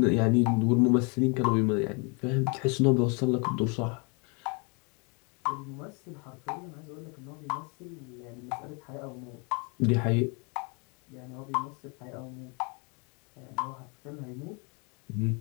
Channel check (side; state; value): right; quieter; 33.6 dB